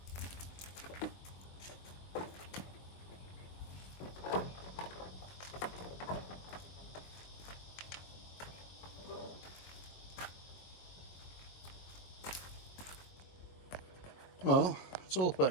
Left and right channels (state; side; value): late; right; 22 ms